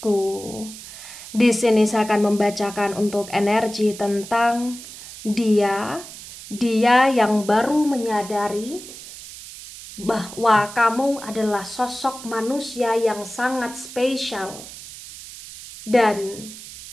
Di sini saya akan membacakan untuk energi tentang dia yang baru menyadari bahwa kamu adalah sosok manusia yang sangat spesial dan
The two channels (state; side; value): noise; right; hiss, 14 dB below the sound